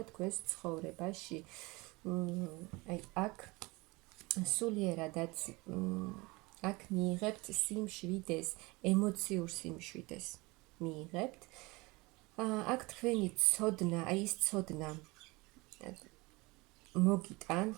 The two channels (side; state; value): left; quieter; 24.0 dB